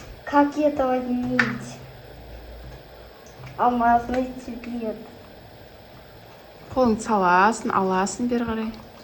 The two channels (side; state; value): both; identical; correlation 1.00